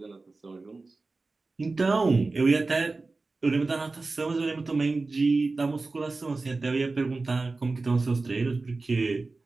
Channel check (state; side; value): quieter; left; 3.6 dB